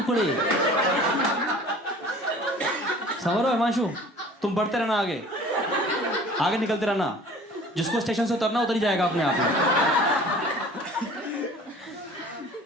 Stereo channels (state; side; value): normal; both; correlation 0.46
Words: समझ रहे हो हिमांशु? तुम बढ़ते रहना, आगे निकलते रहना, जिसको स्टेशन से उतरना उतर ही जाएगा अपने आप में।